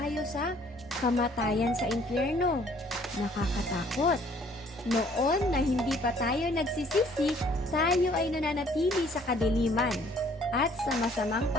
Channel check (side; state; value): both; normal; correlation 0.59